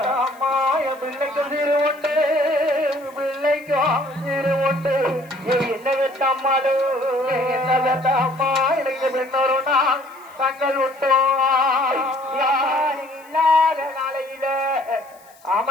அம்மா என் பிள்ளைக்கு சிறு உண்டு பிள்ளைக்கும் சிறு உண்டு என்ன வெட்ட அம்மாடு என்ன வெட்ட அம்மா எனக்கு பின்னொருனா கண்கள் விட்டோம் இல்லாத நாளையில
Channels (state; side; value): noise; left; hiss, 28 dB below the sound